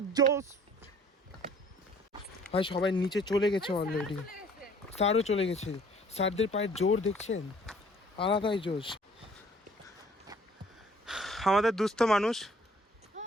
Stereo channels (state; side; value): normal; both; correlation 0.56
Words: জোস। ভাই সবাই নিচে চলে গেছে অলরেডি, স্যারও চলে গেছে। স্যারদের পায়ের জোর দেখছেন, আলাদাই জোশ। আমাদের দুস্থ মানুষ